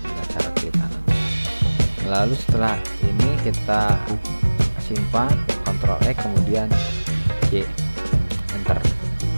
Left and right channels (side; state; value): both; inverted; correlation -1.00